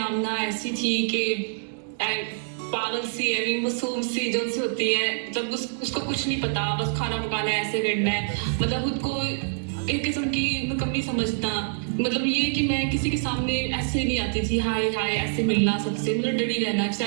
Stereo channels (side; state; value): left; silent; digital silence